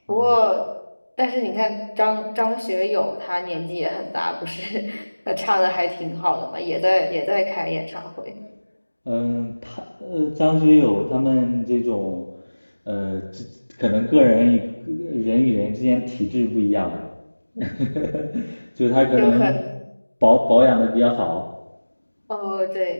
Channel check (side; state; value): both; inverted; correlation -1.00